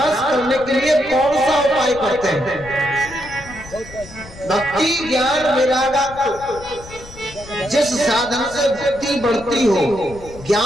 करने के लिए कौन सा उपाय करते हैं? भक्ति ज्ञान विरागा, जिस साधन से भक्ति बढ़ती हो,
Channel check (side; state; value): left; noise; rumble, 17 dB below the sound